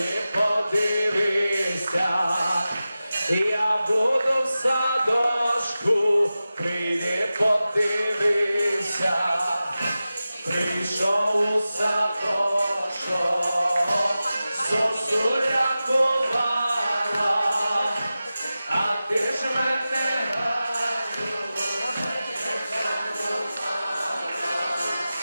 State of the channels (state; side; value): inverted; both; correlation -0.94